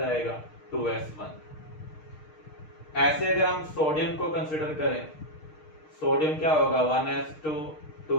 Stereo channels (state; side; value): late; right; 6.5 ms